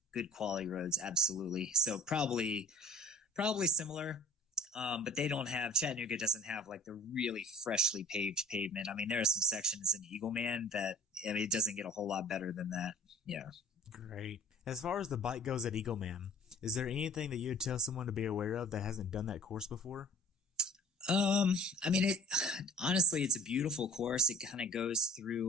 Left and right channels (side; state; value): both; normal; correlation 0.47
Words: Good quality roads, absolutely. So probably similar. But Chattanooga doesn't have like the really freshly paved pavement. I mean, there are some sections in Eagleman that, it doesn't get a whole lot better than that. Yeah. Great. As far as the bike goes at Eagleman, is there anything that you would tell someone to be aware of that hasn't done that course before? I mean, honestly, it's a beautiful course. It kind of goes